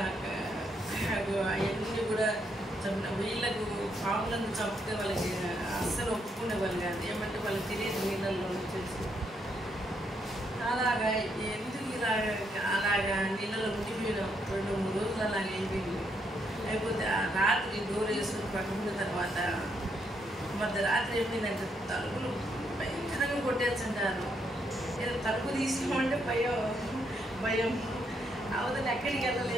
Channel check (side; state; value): both; normal; correlation 0.76